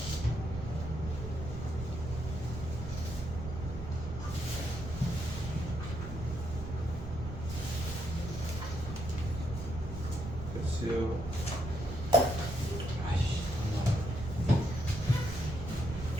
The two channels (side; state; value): right; noise; rumble, 7 dB below the sound